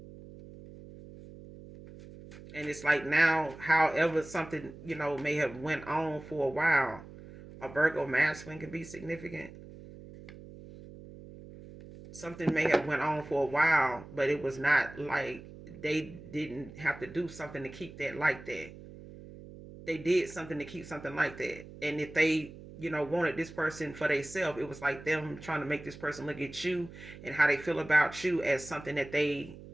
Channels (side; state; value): right; noise; hum, 16 dB below the sound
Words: And it's like now, however something may have went on for a while, a Virgo masculine can be significant. Something may have went on for a while, but it was not like they didn't have to do something to keep that like that. They did something to keep something like that. And if they, wanted this person for themselves, it was like them trying to make this person look at you and how they feel about you as something that they